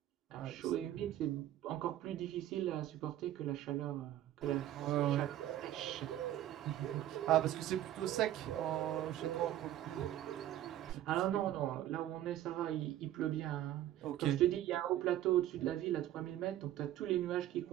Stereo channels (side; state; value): left; quieter; 12.8 dB